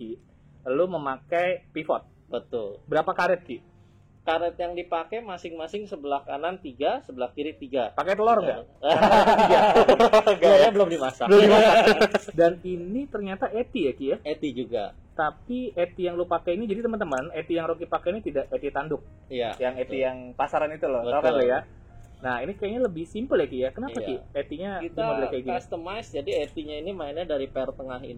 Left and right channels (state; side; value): identical; both; correlation 1.00